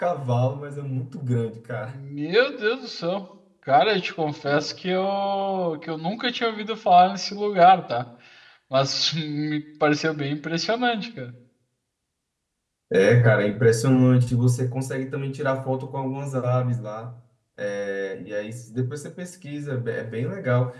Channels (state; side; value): identical; both; correlation 1.00